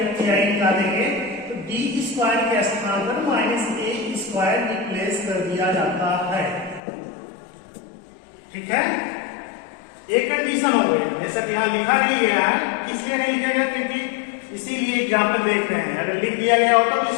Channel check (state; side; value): drops out; right; at 6.8 s